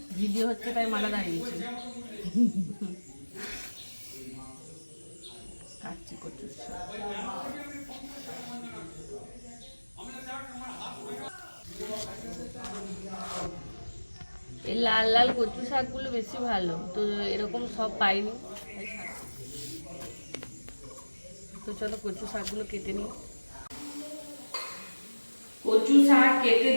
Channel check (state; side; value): inverted; both; correlation -1.00